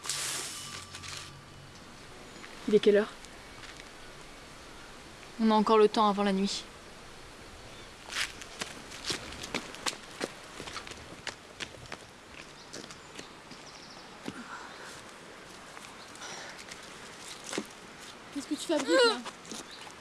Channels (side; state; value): both; identical; correlation 1.00